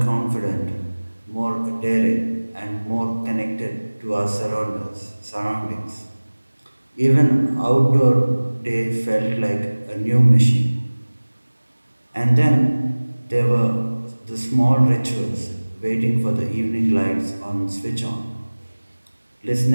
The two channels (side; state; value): both; inverted; correlation -1.00